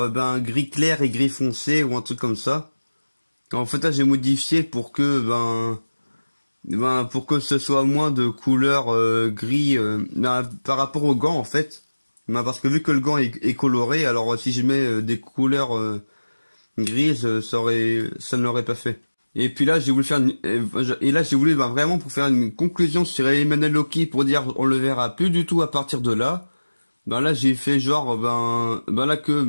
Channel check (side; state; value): both; inverted; correlation -1.00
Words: gris clair et gris foncé ou un truc comme ça. En fait là j'ai modifié pour que pour que ce soit moins de couleur gris par rapport au gant en fait. Parce que vu que le gant est coloré, alors si je mets des couleurs grises, ça ne l'aurait pas fait. Et puis là j'ai voulu faire et là j'ai voulu vraiment pour faire une conclusion sur Emmanuel Loki pour dire on le verra plus du tout à partir de là. Là j'ai fait genre là